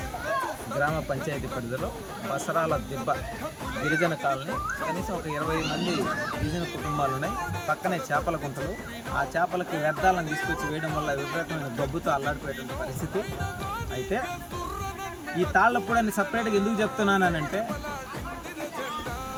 గ్రామ పంచాయతీ పరిధిలో బసరాల దిబ్బ గిరిజన కాలనీ. కనీసం ఒక 20 మంది గిరిజన కుటుంబాలు ఉన్నాయి. పక్కనే చేపల గుంటలు. ఆ చేపలకి వ్యర్థాలను తీసుకొచ్చి వేయడం వల్ల విపరీతమైన గబ్బుతో అల్లాడిపోయేటువంటి పరిస్థితి. అయితే ఈ తాళ్లపూడి అని సపరేట్గా ఎందుకు చెప్తున్నానంటే,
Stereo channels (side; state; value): both; identical; correlation 1.00